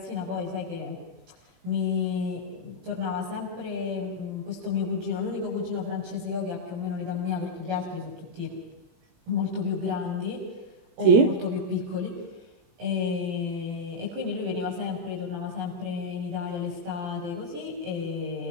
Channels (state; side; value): late; left; 18 ms